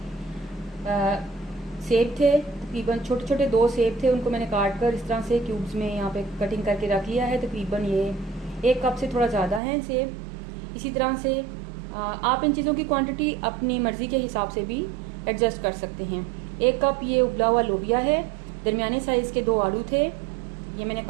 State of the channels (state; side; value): drops out; left; at 9.6 s